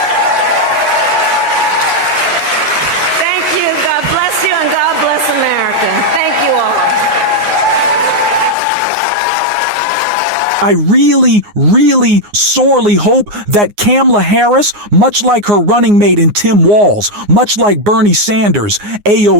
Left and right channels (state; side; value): late; left; 9.6 ms